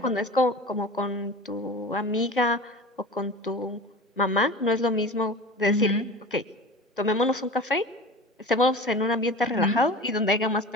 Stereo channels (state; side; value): normal; both; correlation 0.35